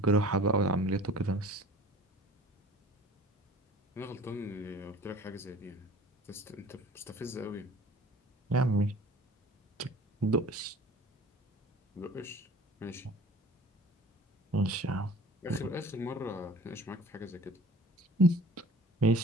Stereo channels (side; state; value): both; normal; correlation 0.46